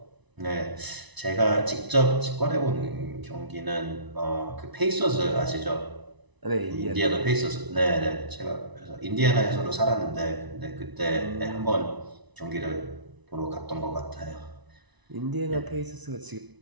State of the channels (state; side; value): late; left; 1.0 ms